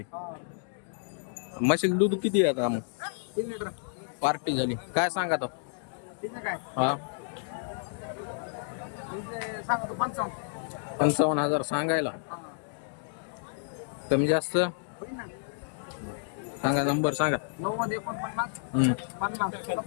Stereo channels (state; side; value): silent; right; digital silence